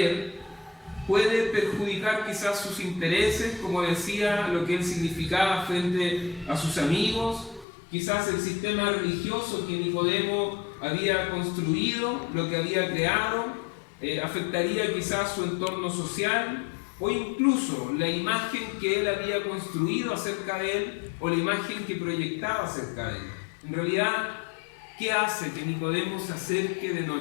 puede perjudicar quizás sus intereses, como decía, lo que él significaba frente a sus amigos. Quizás el sistema religioso que Nicodemo había construido, lo que había creado, afectaría quizás su entorno social, o incluso la imagen que él había construido acerca de él, o la imagen que proyectaba acerca de él. En realidad, ¿qué hace que Nicodemo se acerque de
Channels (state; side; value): drops out; right; at 7.7 s